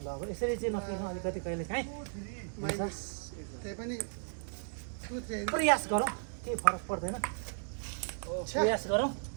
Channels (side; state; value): left; silent; digital silence